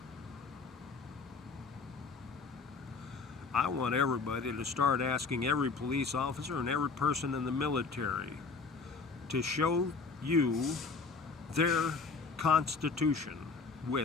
I want everybody to start asking every police officer and every person in the military to show you their Constitution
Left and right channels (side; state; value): right; quieter; 4.5 dB